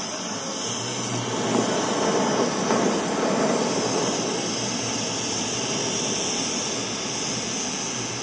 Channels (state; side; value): identical; both; correlation 1.00